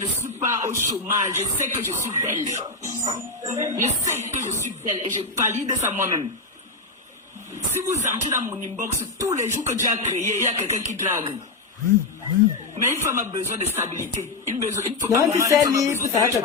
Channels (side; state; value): right; quieter; 3.4 dB